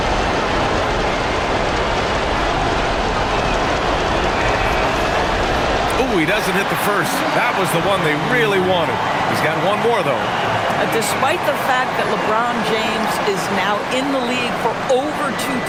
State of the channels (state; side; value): identical; both; correlation 1.00